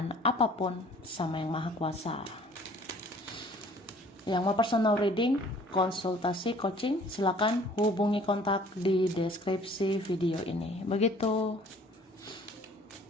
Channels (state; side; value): normal; both; correlation 0.54